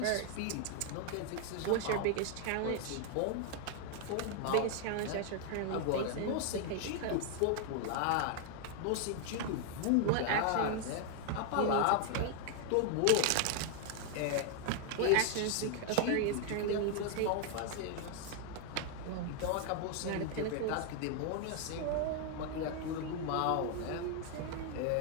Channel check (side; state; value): both; different; correlation 0.00